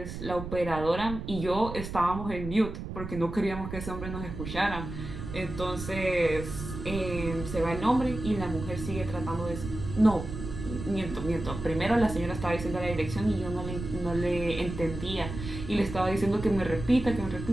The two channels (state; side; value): noise; right; rumble, 8 dB below the sound